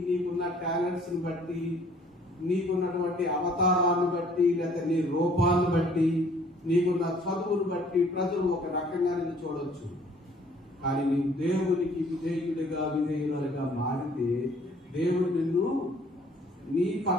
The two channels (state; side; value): normal; both; correlation 0.57